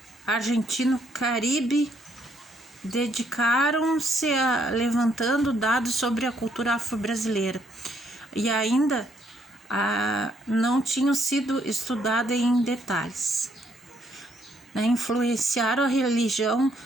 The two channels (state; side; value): normal; both; correlation 0.71